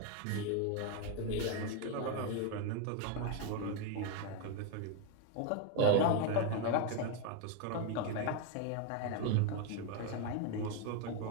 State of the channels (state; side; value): different; both; correlation 0.01